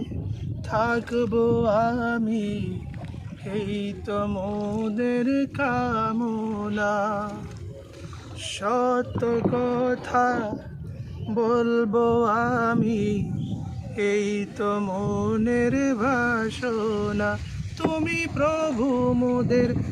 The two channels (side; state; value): both; identical; correlation 1.00